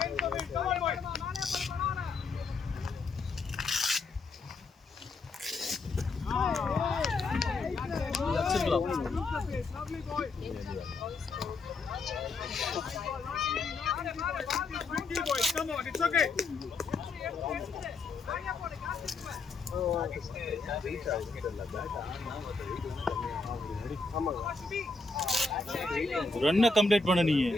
ரன்னை கம்ப்ளீட் பண்ண நீ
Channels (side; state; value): right; quieter; 3.8 dB